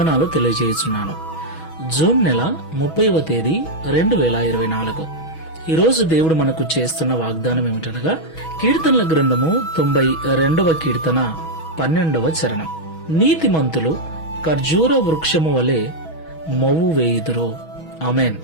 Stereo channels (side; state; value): right; late; 6.2 ms